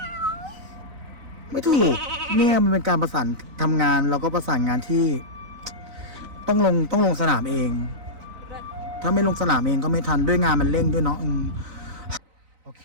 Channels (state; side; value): late; left; 4.0 ms